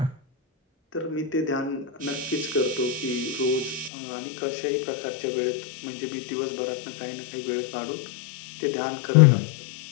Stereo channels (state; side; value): drops out; right; at 3.9 s